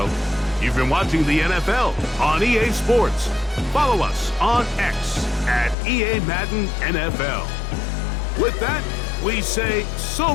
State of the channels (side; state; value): right; drops out; at 5.8 s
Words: You've been watching the NFL on EA Sports. Follow us on X at EA Madden NFL. With that, we say so